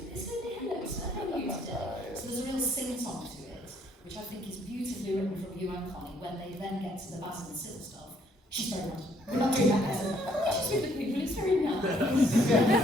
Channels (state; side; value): normal; both; correlation 0.66